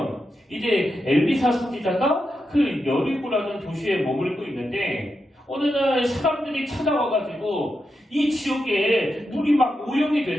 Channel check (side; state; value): both; normal; correlation 0.87